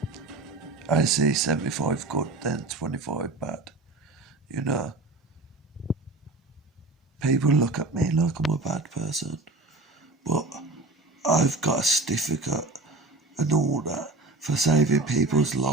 I see 75 good, then 25 bad. People look at me like I'm a bad person, but I've got a certificate and all that for saving people's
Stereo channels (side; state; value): left; quieter; 3.2 dB